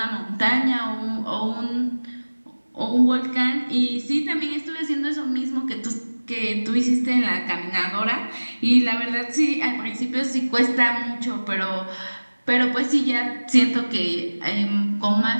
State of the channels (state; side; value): inverted; both; correlation -1.00